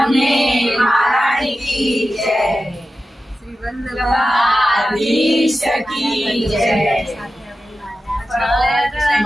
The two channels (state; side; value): normal; both; correlation 0.93